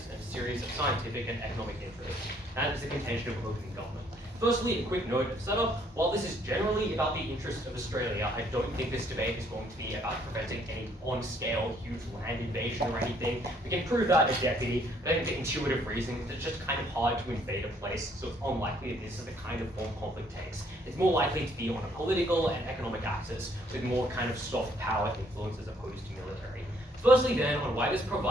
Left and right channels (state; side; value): normal; both; correlation 0.65